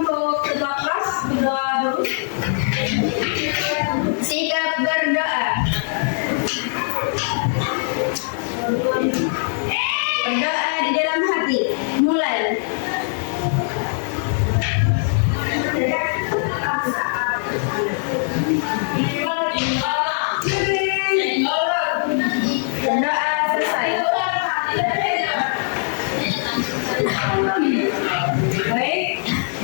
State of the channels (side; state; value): right; silent; digital silence